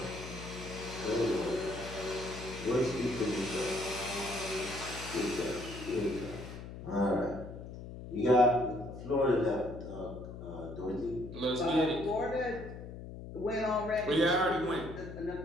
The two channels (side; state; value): left; noise; hum, 11 dB below the sound